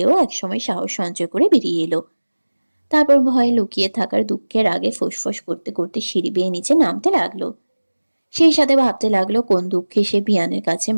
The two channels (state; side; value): inverted; both; correlation -1.00